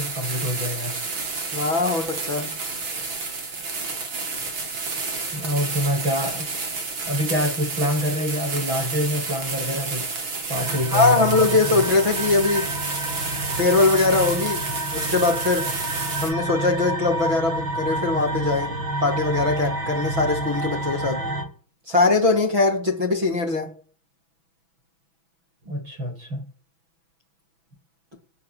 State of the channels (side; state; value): left; late; 6.1 ms